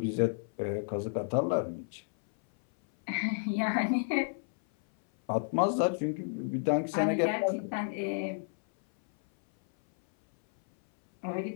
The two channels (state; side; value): silent; right; 57 dB below the other